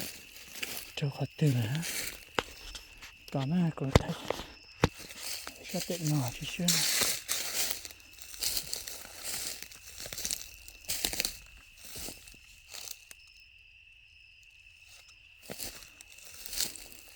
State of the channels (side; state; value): both; identical; correlation 1.00